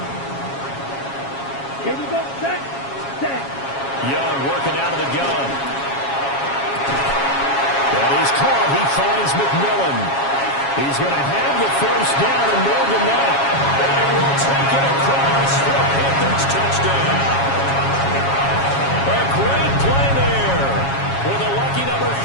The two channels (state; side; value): late; right; 7.3 ms